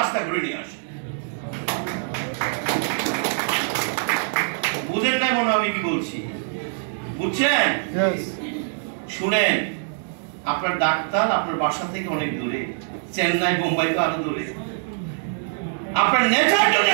ঘুরে নিয়ে আসে। বুঝেন না মনে আমি কি বলছি? বুঝছেন? শুনেন, আপনার ডাক্তার আপনার বাসা থেকে অনেক দূরে, চেন্নাই, বোম্বাই তো আরো দূরে। আপনার নেচার যদি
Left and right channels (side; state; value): left; silent; digital silence